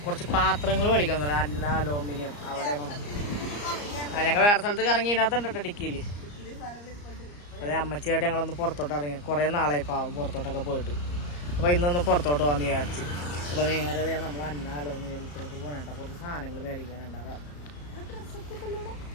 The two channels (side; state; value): right; late; 34 ms